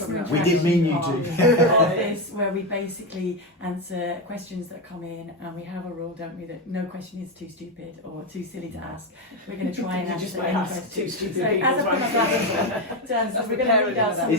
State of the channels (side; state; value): both; normal; correlation 0.11